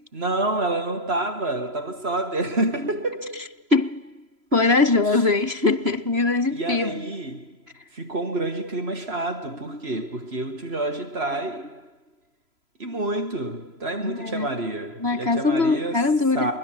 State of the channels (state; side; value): late; left; 3.0 ms